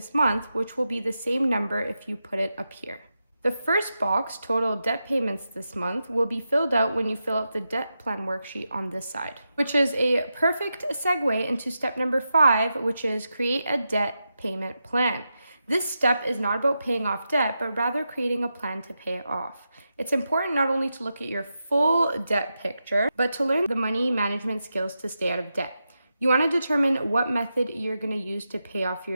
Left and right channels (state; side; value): inverted; both; correlation -0.88